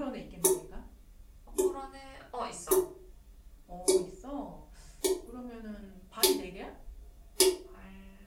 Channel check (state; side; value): identical; both; correlation 1.00